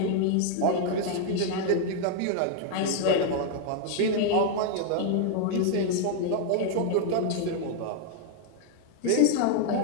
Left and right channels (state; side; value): different; both; correlation 0.00